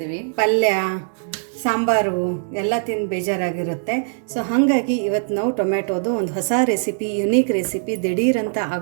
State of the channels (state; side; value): silent; left; digital silence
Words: ಪಲ್ಯ, ಸಾಂಬಾರು ಎಲ್ಲ ತಿಂದು ಬೇಜಾರಾಗಿರುತ್ತೆ. ಸೊ ಹಾಗಾಗಿ ಇವತ್ತು ನಾವು ಟೊಮೆಟೊದು ಒಂದು ಹೊಸ ರೆಸಿಪಿ, ಯುನೀಕ್ ರೆಸಿಪಿ, ದಿಢೀರಂತ